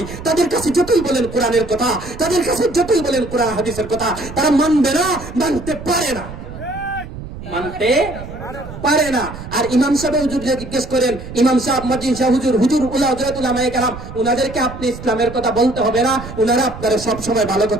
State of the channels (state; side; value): noise; right; rumble, 12 dB below the sound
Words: তাদের কাছে যতই বলেন কোরআনের কথা, তাদের কাছে যতই বলেন কোরআন হাদিসের কথা, তারা মানবে না, মানতে পারে না, মানতে পারে না। আর ইমাম সাহেব হুজুরকে জিজ্ঞেস করেন, ইমাম সাহেব, মুয়াজ্জিন সাহেব, হুজুর, হুজুর, হযরত উলামায়ে কেরাম, উনাদেরকে আপনি ইসলামের কথা বলতে হবে না, উনারা আপনারা সব সময় ভালো